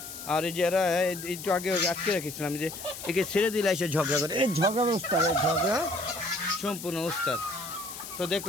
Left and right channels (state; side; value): noise; left; hiss, 11 dB below the sound